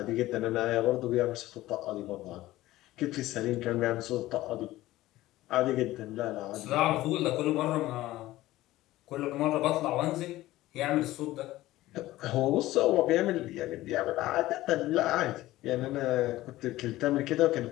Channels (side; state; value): right; quieter; 16.5 dB